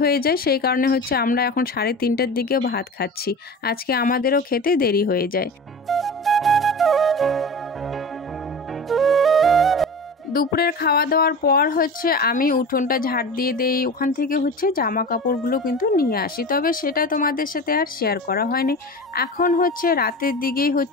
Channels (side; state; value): both; normal; correlation 0.32